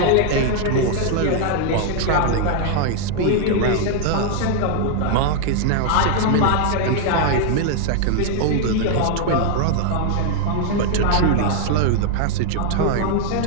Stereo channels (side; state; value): both; different; correlation 0.00